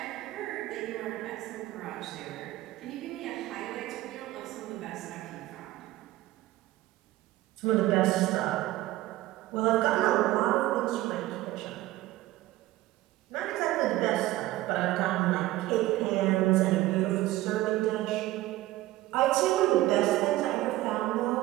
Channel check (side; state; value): left; quieter; 16.6 dB